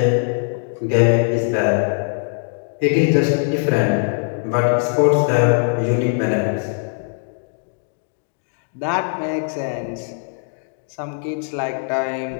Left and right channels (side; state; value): right; silent; 65 dB below the other